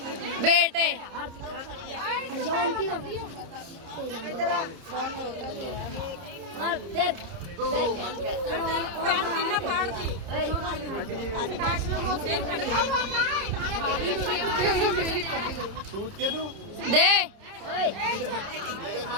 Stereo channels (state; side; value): late; left; 30 ms